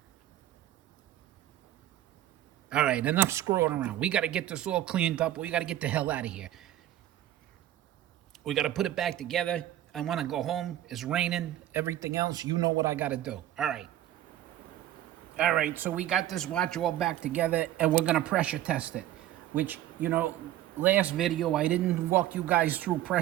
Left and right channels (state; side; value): quieter; left; 13.0 dB